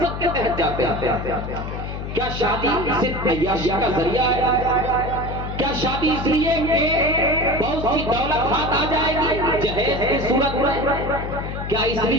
کے تحت جاتے ہیں؟ کیا شادی صرف عیاشی کا ذریعہ ہے؟ کیا شادی اس لیے کہ بہت سی دولت ہاتھ آ جائے گی جہیز کی صورت میں؟ کیا اس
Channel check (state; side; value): noise; left; hum, 6 dB below the sound